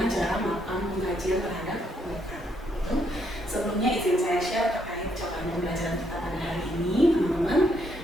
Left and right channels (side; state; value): both; normal; correlation 0.73